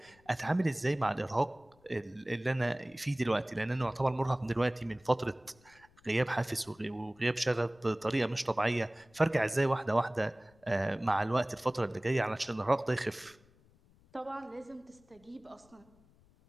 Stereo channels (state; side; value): noise; left; rumble, 29 dB below the sound